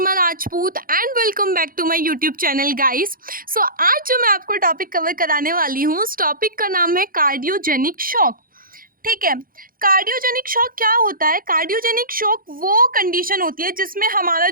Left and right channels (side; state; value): left; late; 0.41 ms